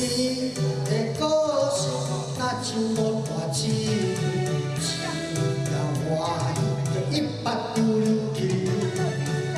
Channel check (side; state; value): both; identical; correlation 1.00